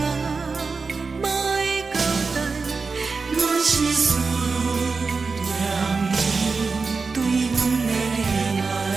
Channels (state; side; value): quieter; left; 4.5 dB